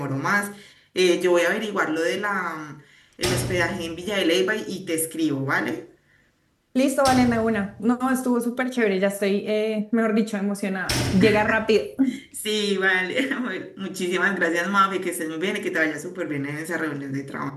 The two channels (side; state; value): both; identical; correlation 1.00